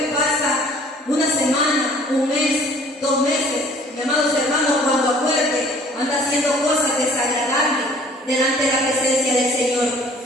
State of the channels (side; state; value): both; normal; correlation 0.54